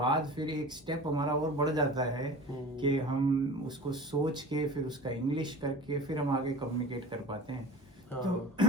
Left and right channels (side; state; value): both; normal; correlation 0.39